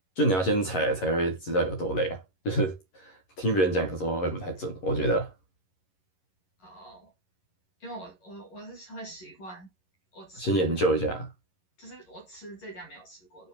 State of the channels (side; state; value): right; late; 11 ms